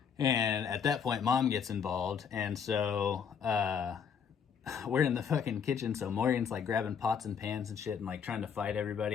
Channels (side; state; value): right; quieter; 7.1 dB